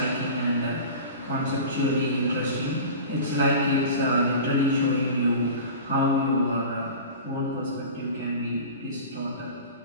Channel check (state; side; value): inverted; both; correlation -0.35